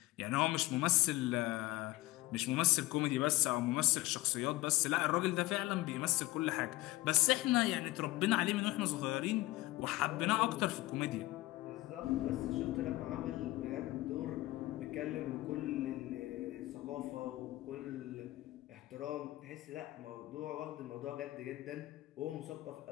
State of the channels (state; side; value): quieter; right; 18.8 dB